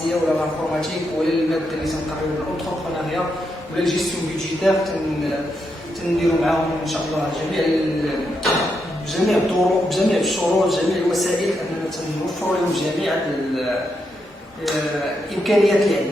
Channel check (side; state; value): both; normal; correlation 0.82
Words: ولا الانفورماتيك ولا الماده اللي تنقراو الانتربرونيا ولا الجيستيون بيدجيتير. تنديروا معاهم ان شاء الله بجميع الطرق بجميع الشروط جميع الوسائل اننا تنوفروا لهم جميع الامكانيات اللي